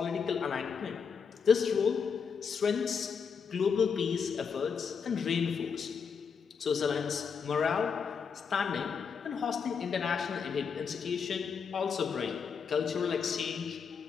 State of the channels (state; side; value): quieter; right; 6.2 dB